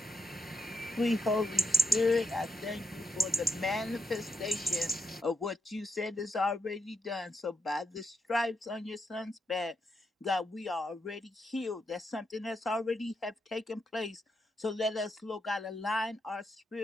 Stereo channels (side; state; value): both; normal; correlation 0.82